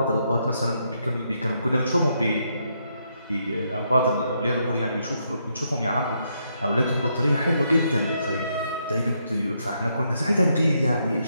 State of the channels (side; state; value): both; inverted; correlation -0.77